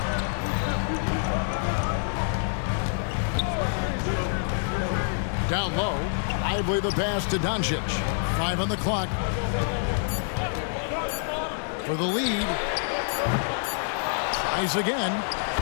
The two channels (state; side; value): silent; right; 60 dB below the other